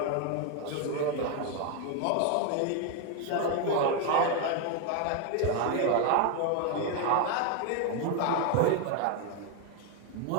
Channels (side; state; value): both; different; correlation 0.01